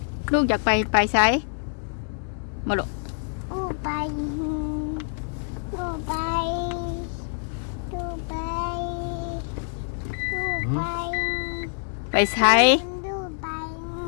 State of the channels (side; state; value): right; silent; digital silence